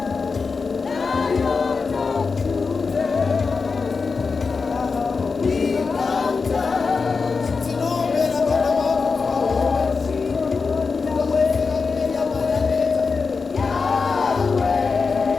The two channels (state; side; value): quieter; right; 4.8 dB